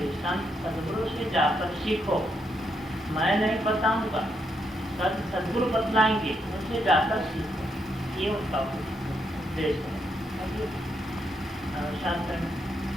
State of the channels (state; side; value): normal; both; correlation 0.79